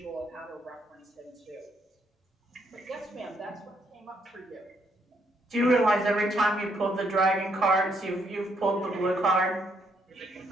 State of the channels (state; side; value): normal; both; correlation 0.73